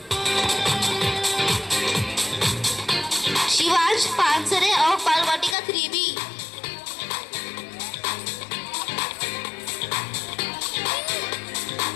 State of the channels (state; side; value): drops out; right; at 5.6 s